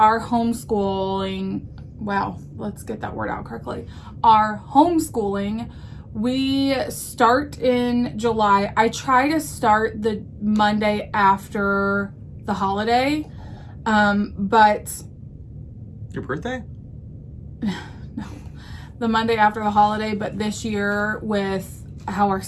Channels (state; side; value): identical; both; correlation 1.00